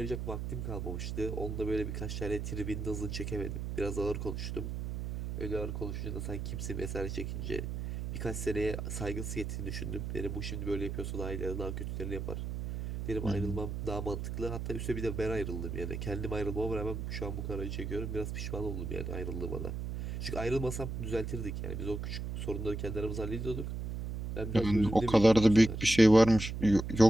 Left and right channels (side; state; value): right; noise; hum, 4 dB below the sound